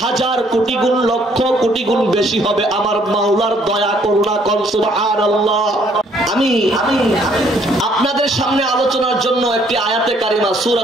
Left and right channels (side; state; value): both; normal; correlation 0.65